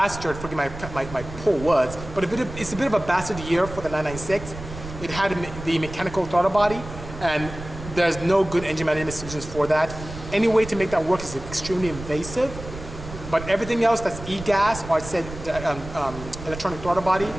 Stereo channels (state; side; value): noise; right; rumble, 12 dB below the sound